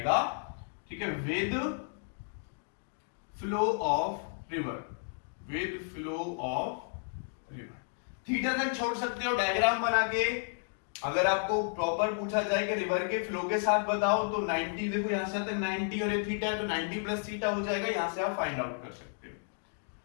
ठीक है, with flow of river, with flow of river. Theta तक छोड़ सकते हो डायग्राम बना के। अगर आपको प्रॉपर पूछा जाए कि रिवर के फ्लो के साथ बताओ तो 90, देखो यहां से तक 90 और ये थीटा है तो 90 प्लस थीटा हो जाएगा, यहां से आप फाइंड आउट कर सकते हो।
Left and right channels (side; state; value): right; silent; digital silence